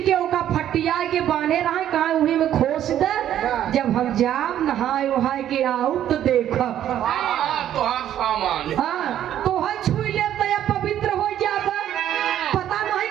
के ओका फटिया के बांधे रहे, कहा वही में खोस दे। जब हम जाब नहाए वहाए के आऊ तो देखब तो हम सामान हाँ तो है छुई ले तो या पवित्र हो जाबा। पता नहीं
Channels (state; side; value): quieter; left; 11.2 dB